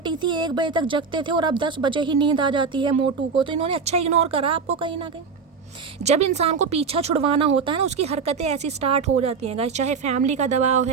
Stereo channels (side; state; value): left; quieter; 5.3 dB